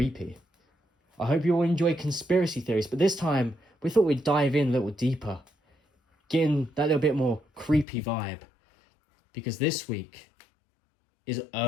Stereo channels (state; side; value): drops out; right; at 7.9 s